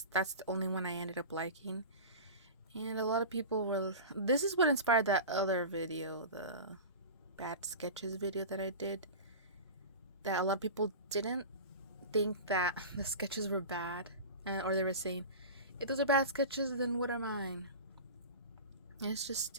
that's the only one I ended up liking. And a lot of people were, this is what inspired that other video, the bad sketches video that I did, that a lot of people didn't think that the sketches were bad, or they were saying, if those are bad sketches, then what are mine? And it's just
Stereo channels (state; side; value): inverted; both; correlation -0.30